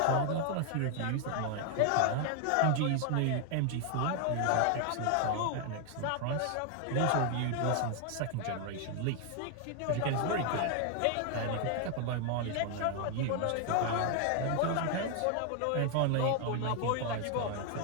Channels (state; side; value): different; both; correlation 0.00